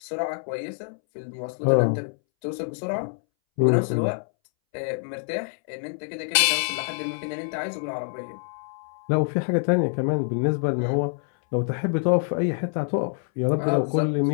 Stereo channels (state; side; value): silent; right; 61 dB below the other